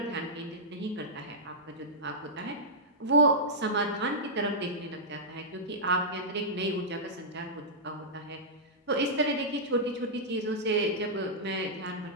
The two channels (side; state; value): both; normal; correlation -0.12